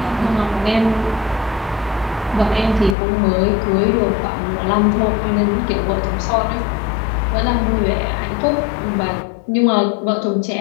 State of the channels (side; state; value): right; drops out; at 3.0 s